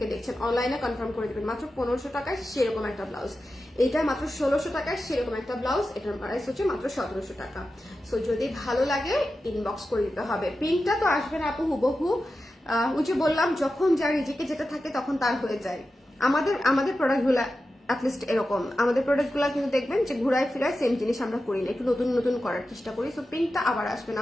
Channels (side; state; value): both; normal; correlation 0.92